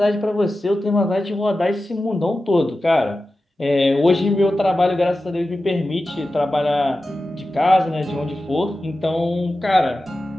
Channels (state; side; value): normal; both; correlation 0.94